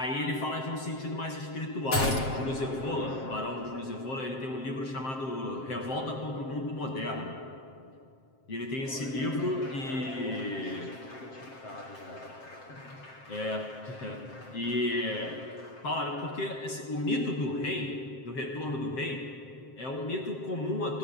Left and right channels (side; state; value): right; late; 7.6 ms